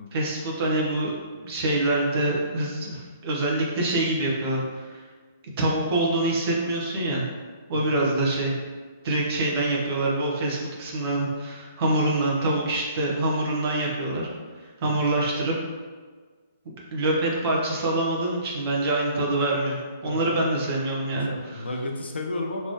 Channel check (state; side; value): inverted; both; correlation -0.51